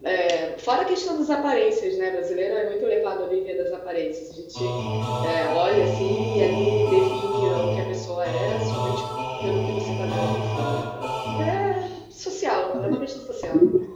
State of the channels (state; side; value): identical; both; correlation 1.00